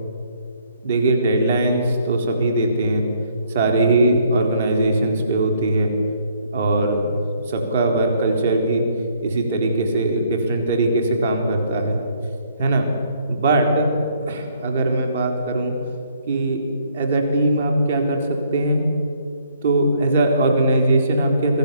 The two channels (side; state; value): both; inverted; correlation -0.66